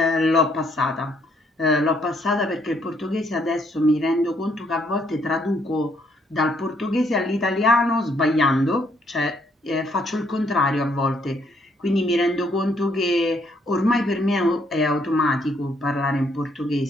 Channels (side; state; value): both; normal; correlation 0.69